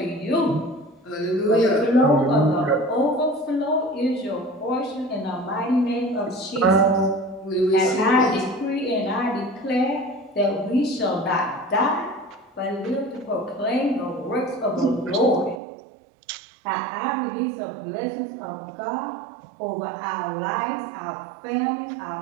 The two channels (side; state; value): left; drops out; at 15.6 s